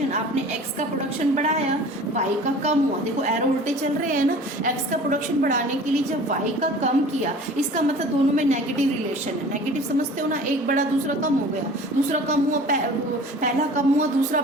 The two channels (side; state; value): both; normal; correlation 0.44